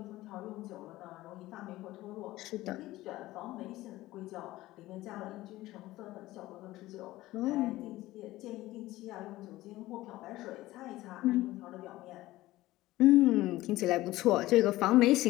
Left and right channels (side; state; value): right; quieter; 17.1 dB